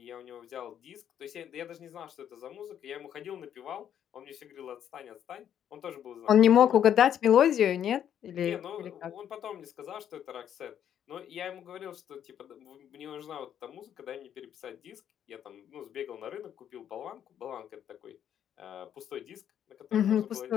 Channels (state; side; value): quieter; right; 9.6 dB